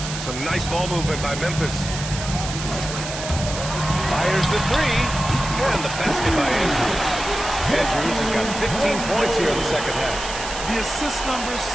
Some nice ball movement by Memphis. Fires the 3. And the basket by Andrews. Andrews has got 15 points here in the second half. The assist numbers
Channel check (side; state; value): right; noise; hiss, 8 dB below the sound